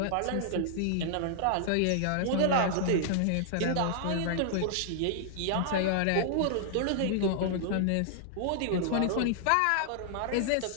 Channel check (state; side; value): different; both; correlation -0.01